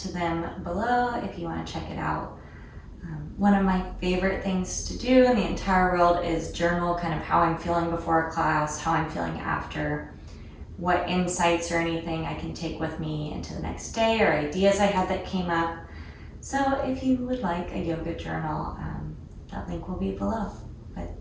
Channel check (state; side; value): identical; both; correlation 1.00